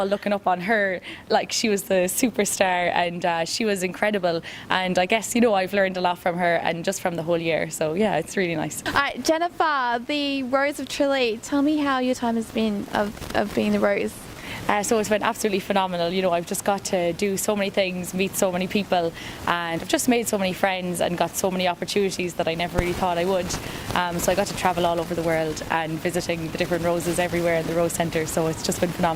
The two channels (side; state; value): both; identical; correlation 1.00